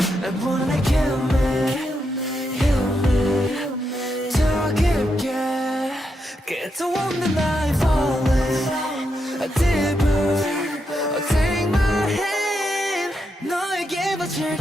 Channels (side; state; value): both; normal; correlation 0.82